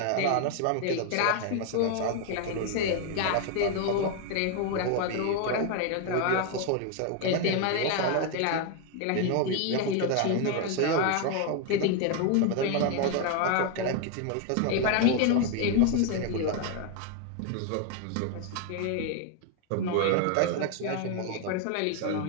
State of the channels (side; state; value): both; different; correlation 0.01